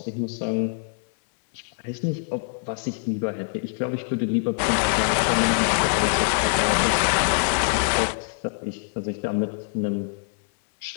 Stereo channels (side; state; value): right; silent; 62 dB below the other